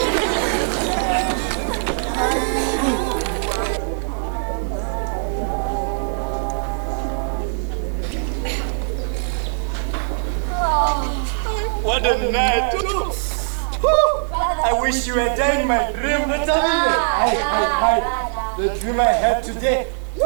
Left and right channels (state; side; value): silent; left; digital silence